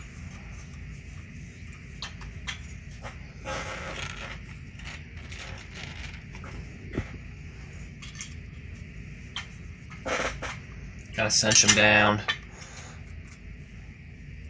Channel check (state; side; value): identical; both; correlation 1.00